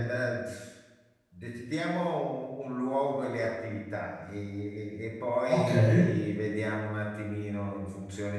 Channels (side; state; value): both; identical; correlation 1.00